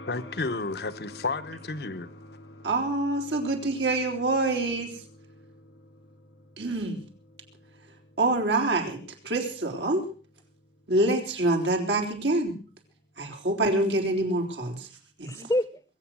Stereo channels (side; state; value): both; normal; correlation 0.19